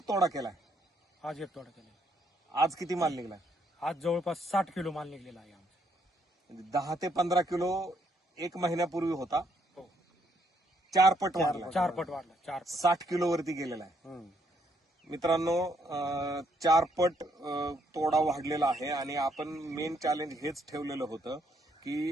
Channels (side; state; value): both; normal; correlation 0.72